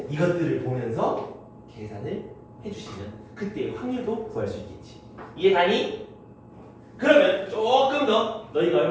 이것들을 보면서 계산을 해주시면 그때 확률도 구할 수 있겠지. 이해가니? 그러면 조금 더 너희가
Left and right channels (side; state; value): both; identical; correlation 1.00